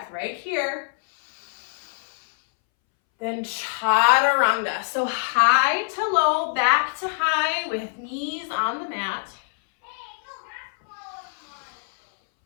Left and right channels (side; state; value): right; silent; 62 dB below the other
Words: right here. Then chaturanga. So high to low, back to high with knees on the mat.